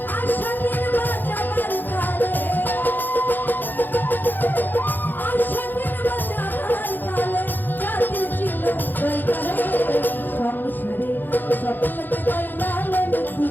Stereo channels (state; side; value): late; right; 0.090 ms